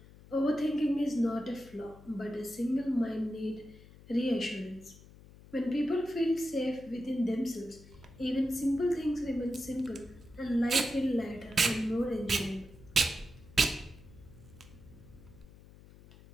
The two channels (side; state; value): left; noise; hum, 21 dB below the sound